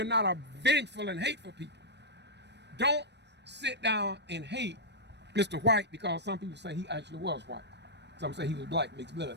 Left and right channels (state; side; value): late; left; 0.50 ms